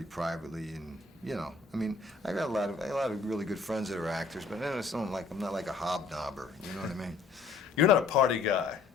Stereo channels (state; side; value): quieter; right; 4.3 dB